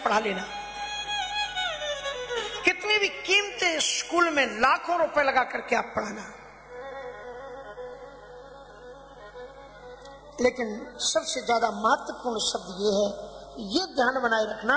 पढ़ा लेना, कितने भी कीमती स्कूल में लाखों रुपए लगा करके आप पढ़ाना, लेकिन सबसे ज्यादा महत्वपूर्ण शब्द ये है, ये ध्यान बनाए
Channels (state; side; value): identical; both; correlation 1.00